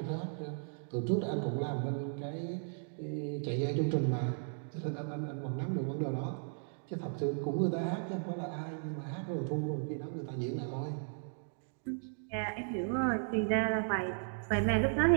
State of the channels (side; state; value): left; silent; digital silence